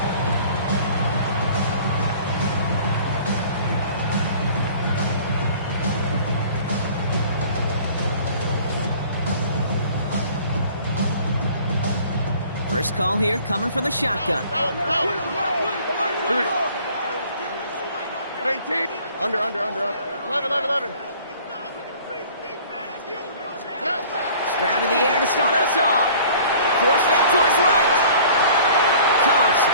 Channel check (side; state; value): both; inverted; correlation -0.50